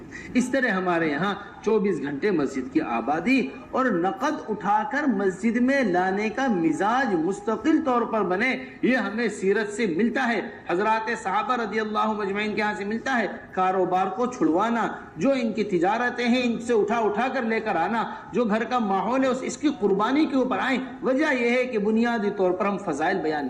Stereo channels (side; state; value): both; identical; correlation 1.00